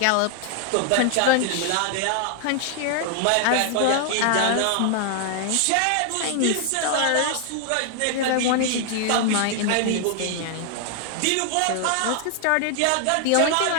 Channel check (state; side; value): different; both; correlation 0.00